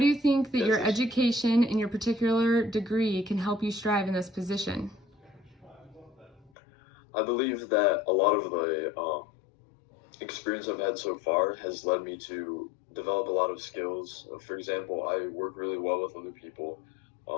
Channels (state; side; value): drops out; right; at 6.5 s